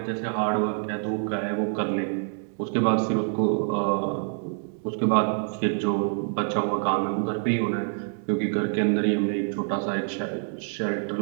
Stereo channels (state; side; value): silent; left; 55 dB below the other